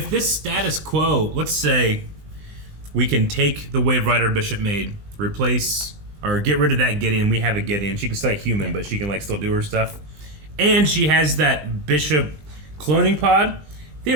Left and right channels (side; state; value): left; late; 20 ms